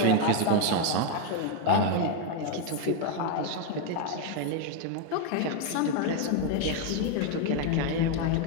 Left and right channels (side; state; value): both; different; correlation 0.01